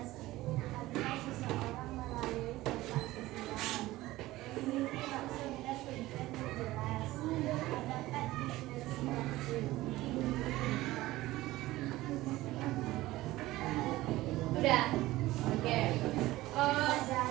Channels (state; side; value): quieter; left; 17.5 dB